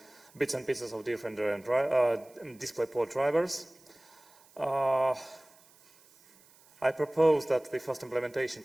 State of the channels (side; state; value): right; noise; hiss, 28 dB below the sound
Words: bits and pieces of different DisplayPort drivers. I propose that the first implementation